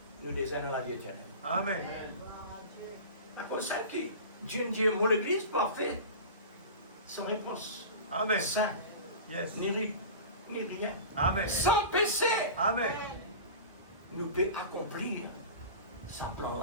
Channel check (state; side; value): inverted; both; correlation -0.34